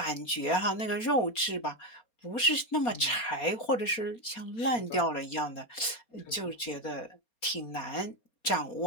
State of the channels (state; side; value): late; right; 4.3 ms